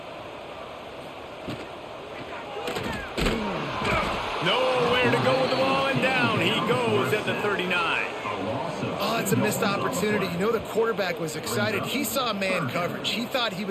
Nowhere to go with the ball, and down he goes at the 39. Oh, it's a missed opportunity. You know the quarterback was excited. He saw man coverage. He thought he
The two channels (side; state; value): both; identical; correlation 1.00